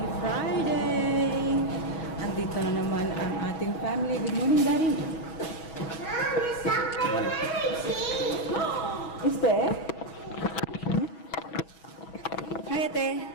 Friday! Andito na naman ang ating family. Good morning, Daddy! Mom, it's not my cheese! Is there? Hi, Ate!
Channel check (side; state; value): right; late; 6.2 ms